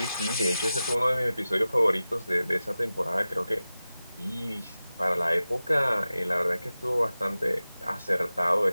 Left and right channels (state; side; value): inverted; both; correlation -0.95